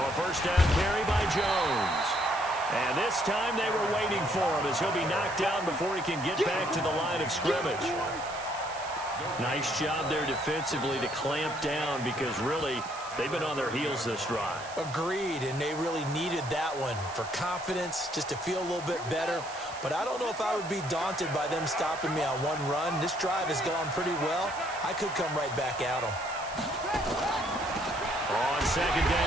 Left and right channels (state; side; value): noise; right; hiss, 15 dB below the sound